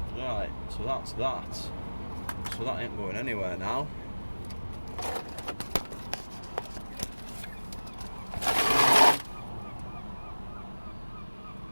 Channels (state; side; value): inverted; both; correlation -1.00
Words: Right, so that's that. So that ain't going anywhere now.